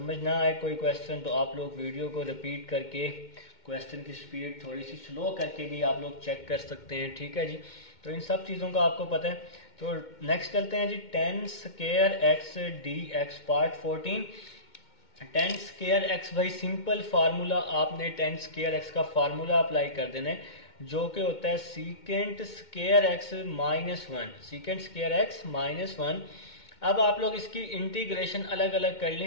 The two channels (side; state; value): right; late; 2.2 ms